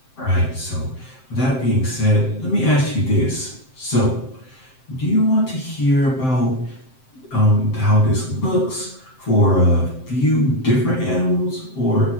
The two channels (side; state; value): right; late; 7.7 ms